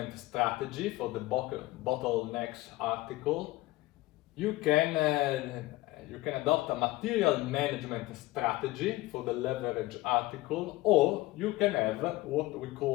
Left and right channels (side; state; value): right; quieter; 19.0 dB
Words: strategy for the bottlenecks article. You can adopt a material management strategy for the leverage article, or you can have what we